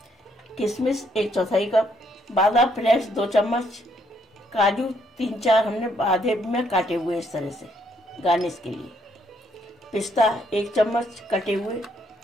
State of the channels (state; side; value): normal; both; correlation 0.71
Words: किशमिश 1/4 कप, बादाम फ्लेक्स 2 चम्मच, काजू 3-4 हमने आधे में काटे हुए इस तरह से गार्निश के लिए, पिस्ता 1 चम्मच कटे हुए,